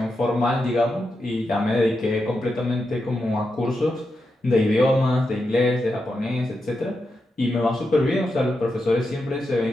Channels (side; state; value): both; normal; correlation 0.87